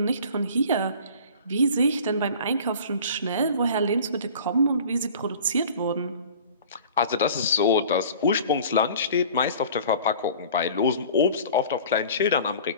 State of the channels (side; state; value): both; inverted; correlation -0.44